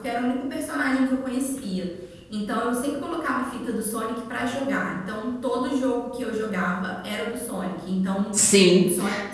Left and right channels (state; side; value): identical; both; correlation 1.00